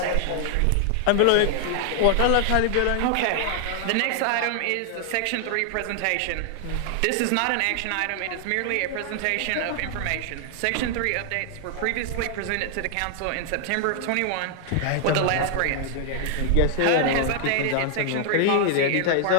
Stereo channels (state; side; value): different; both; correlation 0.00